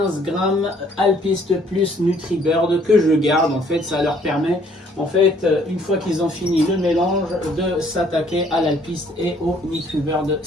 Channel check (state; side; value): normal; both; correlation 0.62